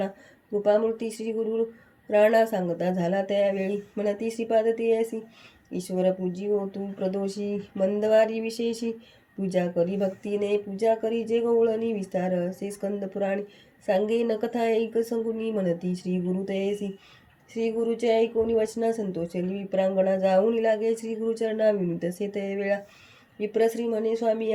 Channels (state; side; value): identical; both; correlation 1.00